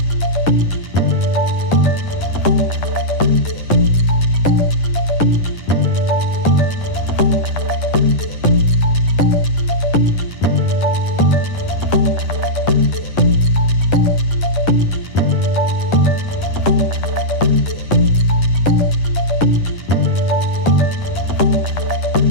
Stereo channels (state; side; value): late; right; 10 ms